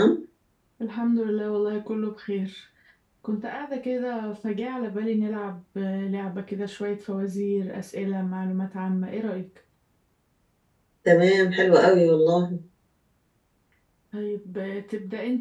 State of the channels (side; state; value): both; identical; correlation 1.00